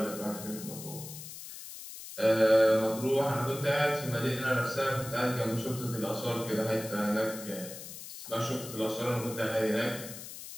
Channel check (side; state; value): left; noise; hiss, 12 dB below the sound